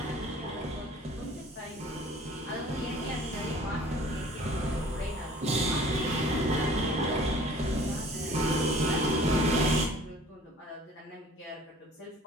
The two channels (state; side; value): normal; both; correlation 0.50